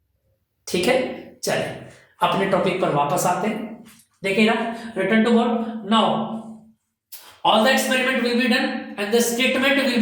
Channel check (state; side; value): identical; both; correlation 1.00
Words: ठीक है, चलिए अपने टॉपिक पर वापस आते हैं। देखिए ना, return to board now, all the experiment will be done and the statement will